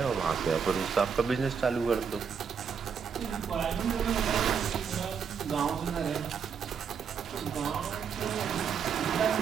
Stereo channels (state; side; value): quieter; left; 6.7 dB